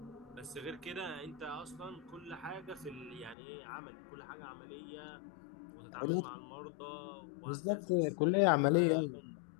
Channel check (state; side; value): drops out; right; at 3.4 s